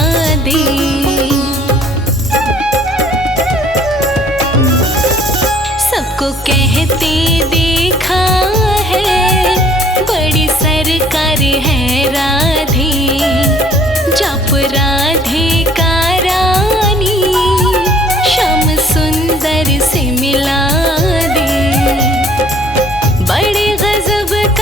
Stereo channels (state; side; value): normal; both; correlation 0.57